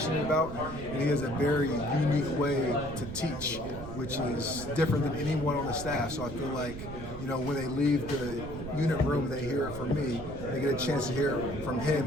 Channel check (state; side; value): noise; right; rumble, 10 dB below the sound